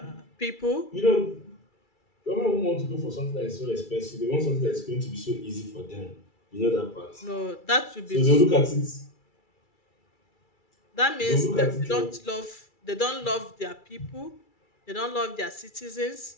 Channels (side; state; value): right; late; 2.3 ms